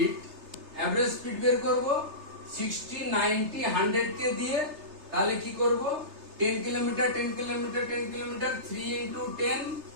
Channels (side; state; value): left; late; 3.3 ms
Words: স্পিড বের করব 60, 90, 100 কে দিয়ে, তাহলে কি করব 10 kilometre 10 kilometre 10 kilometre 3 into 10